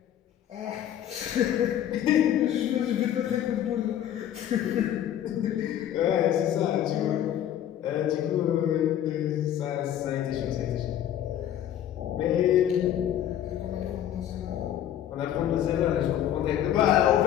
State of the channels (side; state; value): right; quieter; 10.9 dB